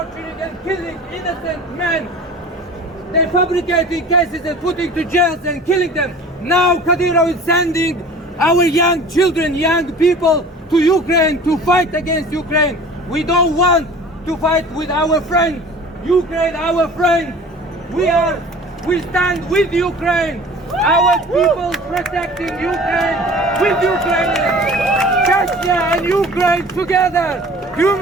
and killing innocent men. They're fabricating cases and putting to jails and killing them. Now Kadyrov is sending our young children, young people to Ukraine to fight against Ukraine. We don't want to fight with our friends. Ukraine, our friend. We stand with Ukraine. Our people protecting Ukraine with Ukrainians. Chechnya and Ukraine together.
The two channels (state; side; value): normal; both; correlation 0.43